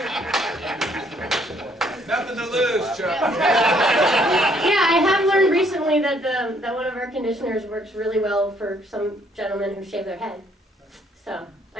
Nothing to lose, Chuck. Yeah, I have learned recently that that one of our conditioners works really well for some gentlemen who shave their head. So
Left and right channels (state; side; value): normal; both; correlation 0.66